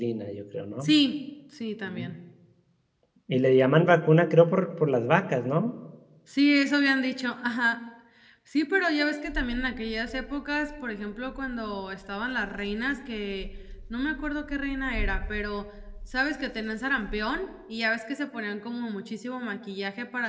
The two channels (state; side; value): identical; both; correlation 1.00